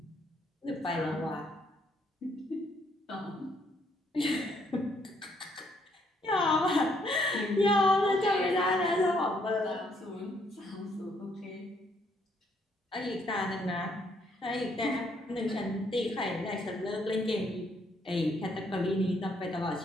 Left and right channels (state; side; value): normal; both; correlation 0.70